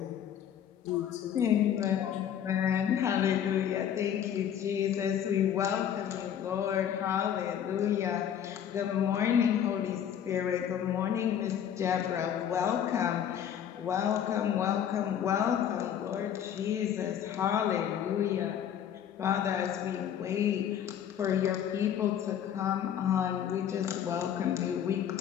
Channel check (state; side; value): quieter; right; 9.4 dB